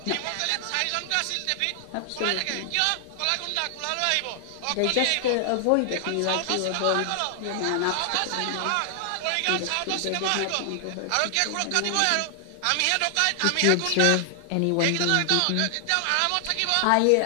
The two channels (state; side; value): different; both; correlation 0.00